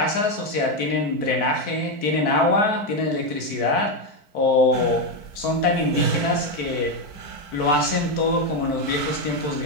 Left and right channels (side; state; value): right; late; 4.5 ms